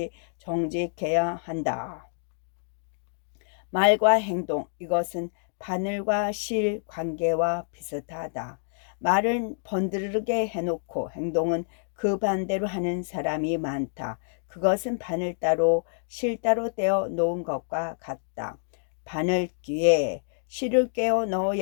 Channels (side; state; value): right; silent; digital silence